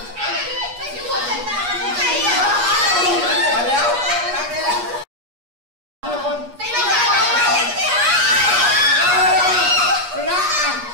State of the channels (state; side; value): late; left; 8.4 ms